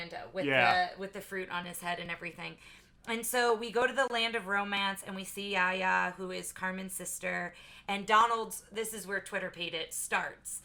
with the fruit on his head and everything. And so we go to the land of romance, and we see Yaya, who is Carmen's sister, and Donald's. This is where Twitter paid it starts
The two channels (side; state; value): both; identical; correlation 1.00